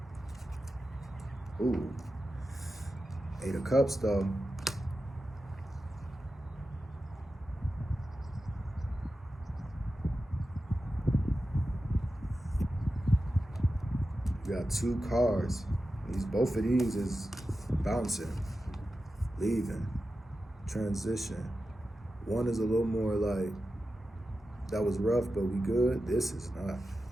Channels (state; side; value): normal; both; correlation 0.92